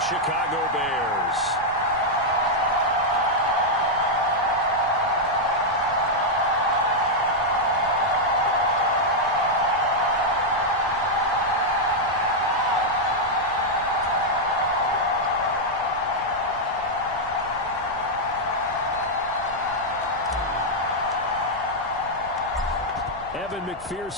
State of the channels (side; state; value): right; noise; rumble, 19 dB below the sound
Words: Chicago Bears. Evan